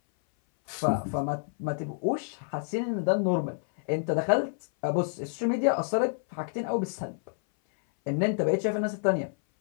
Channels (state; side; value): silent; right; 58 dB below the other